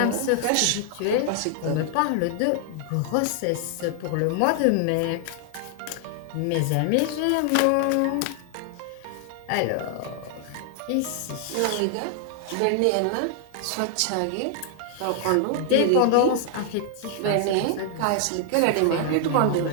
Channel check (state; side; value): different; both; correlation 0.00